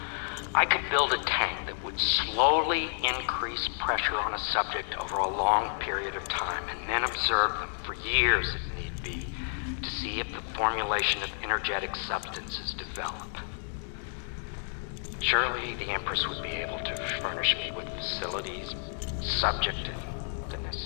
I could build a tank that would slowly increase pressure on a subject over a long period of time and then observe them for years if need be to see if the formulation of energetic substances develop. Surely the Empress would be able to furnish me with facilities subject to the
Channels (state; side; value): silent; right; 58 dB below the other